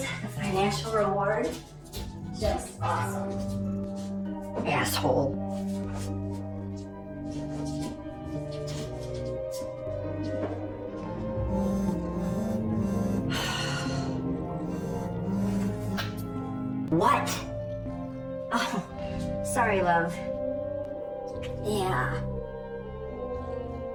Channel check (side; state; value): both; identical; correlation 1.00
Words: the financial reward, just awesome. Asshole. What? Oh, sorry, love. Yeah.